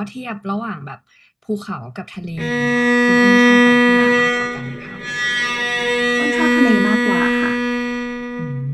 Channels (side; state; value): both; identical; correlation 1.00